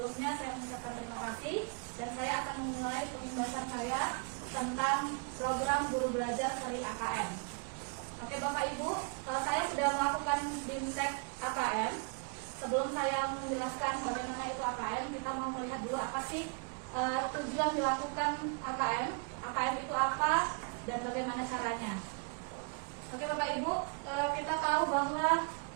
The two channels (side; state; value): left; quieter; 35.1 dB